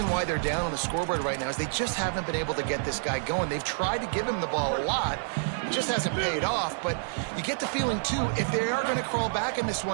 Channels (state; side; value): silent; left; digital silence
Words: why they're down on the scoreboard right now is they just haven't been able to get this guy going. They've tried to give him the ball a lot. It just hasn't paid off, but you get the feeling, too, if they are going to crawl back in this